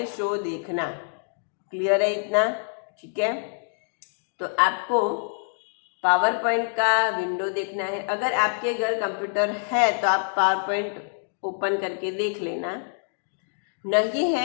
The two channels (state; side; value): silent; right; digital silence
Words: शो देखना। क्लियर है इतना, ठीक है। तो आपको पावर पॉइंट का विंडो देखना है। अगर आपके घर कंप्यूटर है तो आप पावर पॉइंट ओपन करके देख लेना, नहीं